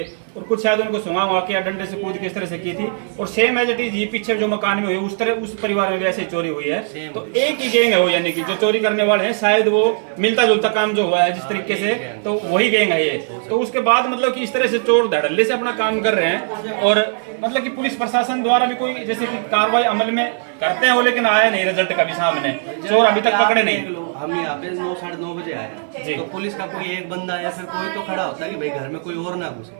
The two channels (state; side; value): silent; left; 66 dB below the other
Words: और कुछ शायद उनको सुंगा हुआ के या डंडे से कूद के इस तरह से की थी। और सेम एज इट इज ये पीछे जो मकान में हुई उस तरह उस परिवार में भी ऐसी चोरी हुई है। तो एक ही गैंग है वो, यानी कि जो चोरी करने वाले हैं शायद वो मिलता जुलता काम जो हुआ है जिस तरीके से, तो वही गैंग है ये। तो उसके बाद मतलब कि इस तरह से चोर धड़ल्ले से अपना काम कर रहे हैं और मतलब कि पुलिस प्रशासन द्वारा भी कोई जैसे कि कार्रवाई अमल में करते हैं वो, लेकिन आया नहीं रिजल्ट कभी सामने, चोर अभी तक पकड़े नहीं। हम यहाँ पे 9-9:30 बजे आए तो पुलिस का कोई एक बंदा या फिर कोई तो खड़ा होता है कि भाई घर में कोई और ना